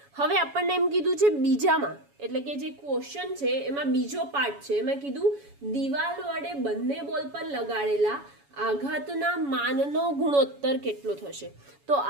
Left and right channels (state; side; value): late; left; 7.1 ms